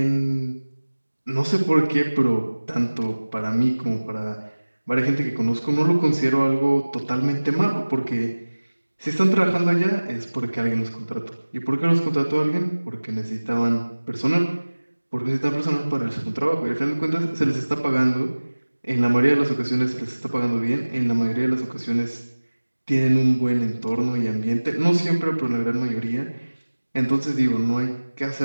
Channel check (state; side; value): inverted; both; correlation -1.00